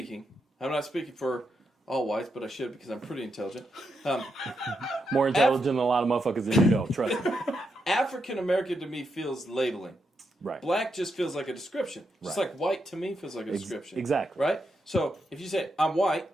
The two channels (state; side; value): normal; both; correlation 0.83